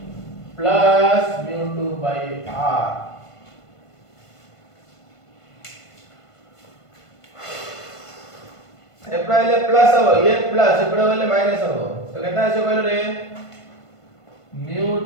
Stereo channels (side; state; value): right; late; 1.5 ms